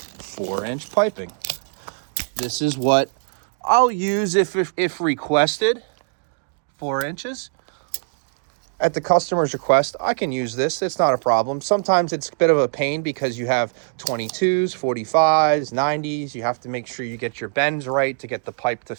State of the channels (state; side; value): silent; left; digital silence